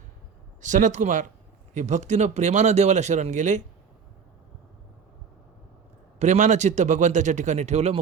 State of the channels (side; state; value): left; quieter; 6.4 dB